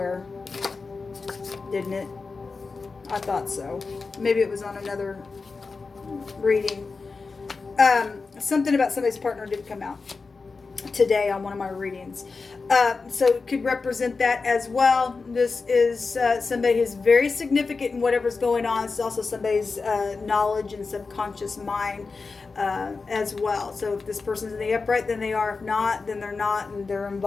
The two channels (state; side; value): quieter; right; 4.3 dB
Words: didn't it? I thought so. Maybe it was on another reading. Something about somebody's partner did come out today on one of my readings. So it could represent that as well. This is somebody who's very significant in whatever's going on. It's also somebody's knowledge and subconscious mind as well. So if this person's in the upright, then they are. If not, then they're not, and they're